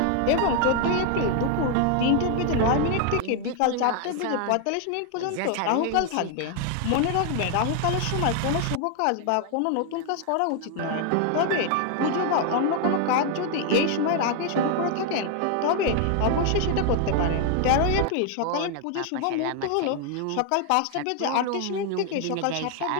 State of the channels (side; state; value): both; different; correlation 0.00